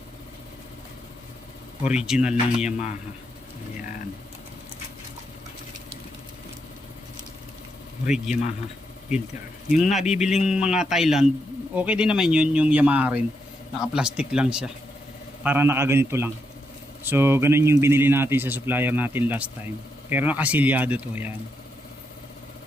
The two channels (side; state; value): both; normal; correlation 0.81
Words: original ng Yamaha. Ayan, rig Yamaha filter. Yung nabibiling mga Thailand, okay din naman yun, yung Yamaha rin, naka plastic lang siya, para nakaganito lang. So ganun yung binili natin sa supplier natin last time, pero nakasilyado to. Yan,